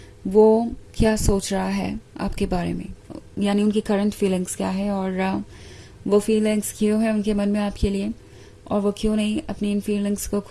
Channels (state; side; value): identical; both; correlation 1.00